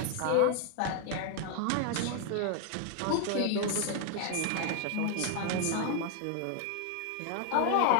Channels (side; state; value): both; different; correlation 0.00